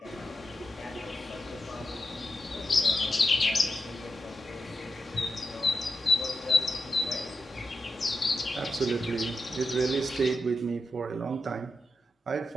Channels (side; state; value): both; normal; correlation 0.87